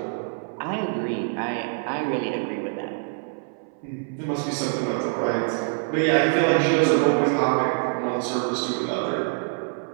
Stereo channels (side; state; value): left; silent; 60 dB below the other